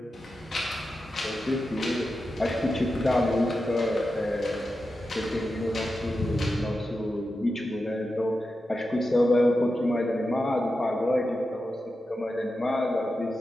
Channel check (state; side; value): normal; both; correlation 0.90